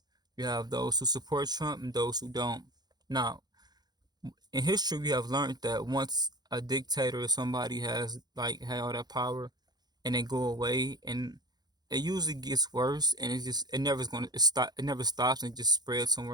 You have those who support Trump and those who don't. Now, in history we have learned that once a dictator or somebody has like had all that power and then go away and it usually gets worse and it never is going to stop, it never stops and just spreads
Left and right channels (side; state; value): left; late; 0.20 ms